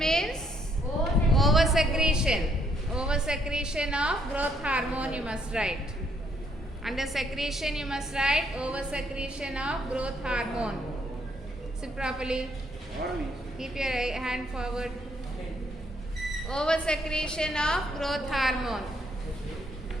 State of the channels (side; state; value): both; normal; correlation 0.70